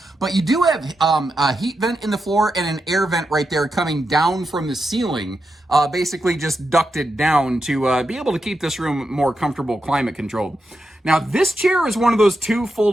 but you do have a heat vent in the floor and an air vent right there coming down from the ceiling, basically just ducted down to be able to keep this room more comfortable, climate controlled. Now, this chair is one of those 2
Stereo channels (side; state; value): both; normal; correlation 0.86